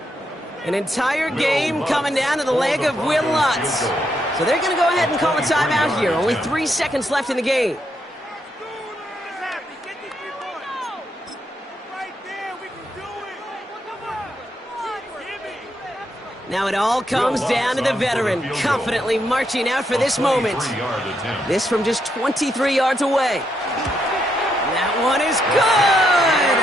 An entire game coming down to the leg of Will Lutz. So they're going to go ahead and call a timeout here. Only 3 seconds left in the game. Now it all comes down to the veteran, confidently marching out for this moment. This from just 23 yards away. That one is good!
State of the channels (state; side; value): normal; both; correlation 0.79